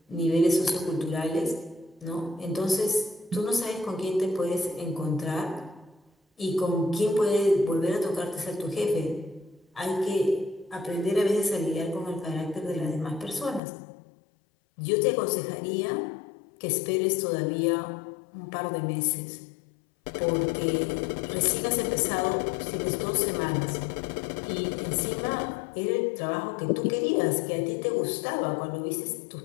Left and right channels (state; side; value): drops out; right; at 13.6 s